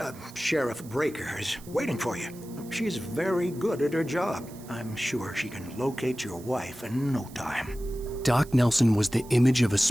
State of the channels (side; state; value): right; noise; hiss, 21 dB below the sound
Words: Sheriff Breaker, is waiting for you. She's very good at her job. I'm sure she can locate your wife in no time. Doc Nelson was the image of a